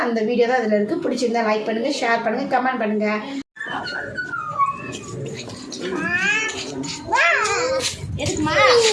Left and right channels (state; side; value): identical; both; correlation 1.00